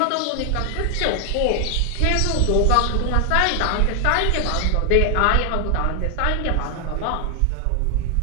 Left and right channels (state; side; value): different; both; correlation 0.00